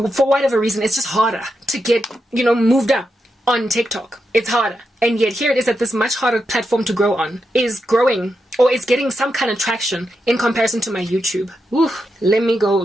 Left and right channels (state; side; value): normal; both; correlation 0.86